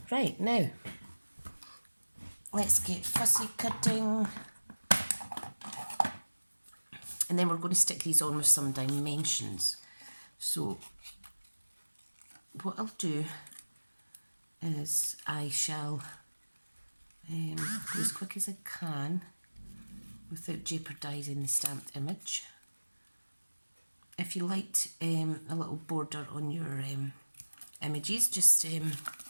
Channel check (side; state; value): both; inverted; correlation -1.00